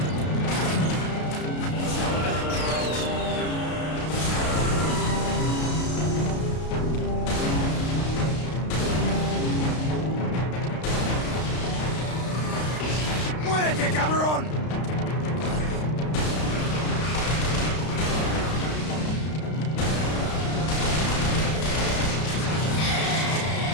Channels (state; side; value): late; right; 33 ms